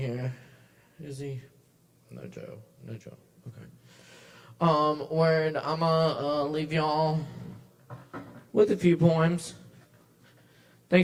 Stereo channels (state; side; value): identical; both; correlation 1.00